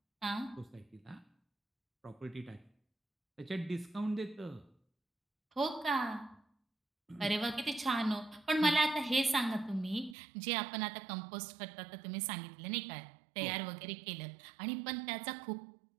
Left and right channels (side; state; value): left; drops out; at 10.2 s